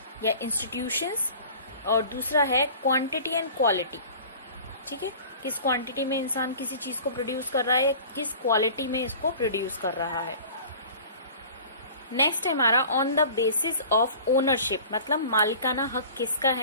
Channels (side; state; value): both; inverted; correlation -0.43